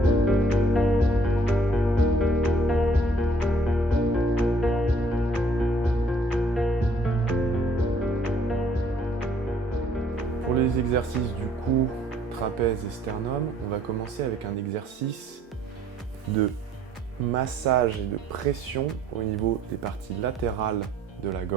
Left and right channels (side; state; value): both; normal; correlation 0.62